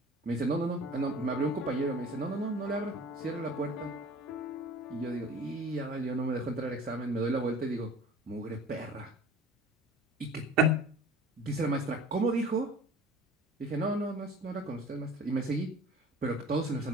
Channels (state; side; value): normal; both; correlation 0.43